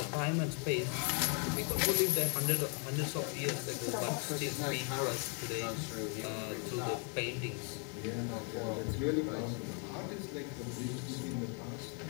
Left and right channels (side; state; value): right; quieter; 38.8 dB